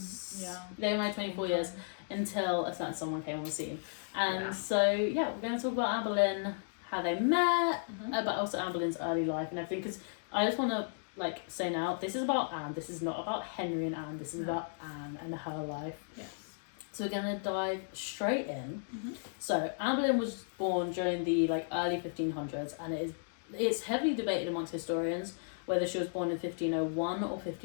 Yeah. They were married 24 years until a certain someone came on the scene. And so, we're going to talk about Anne Boleyn, how they met, but also Anne Boleyn's early life and everything, because I just want to say now, this is about Anne, this is not about Henry and Anne, this is about Anne and her life. Yes. So we're going to dive straight in. So Anne Boleyn was born during the early 1500s, and it's heavily debated amongst historians whether she was born in 1501 or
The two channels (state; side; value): silent; right; digital silence